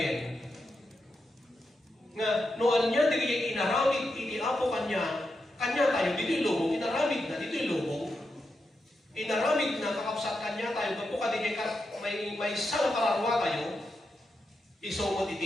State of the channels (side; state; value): both; normal; correlation 0.86